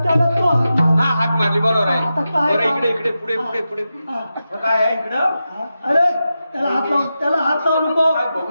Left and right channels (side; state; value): both; inverted; correlation -0.91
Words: त्याला तो हा हाक मारली बरोबर आहे. आता काय बरं काम? इकडे इकडे पुढे पुढे पुढे आता काय आहे इकडं? अरे त्याला हात लावू नको. काय